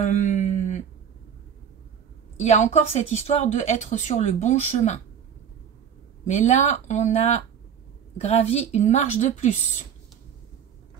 y a encore cette histoire de être sur le bon chemin. Mais là, on a gravi une marche de plus.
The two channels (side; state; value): left; quieter; 8.1 dB